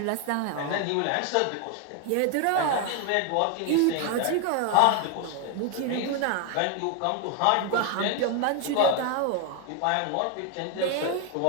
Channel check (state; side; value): different; both; correlation 0.01